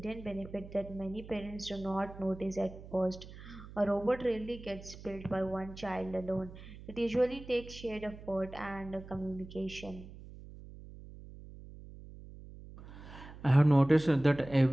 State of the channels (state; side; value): noise; right; hum, 15 dB below the sound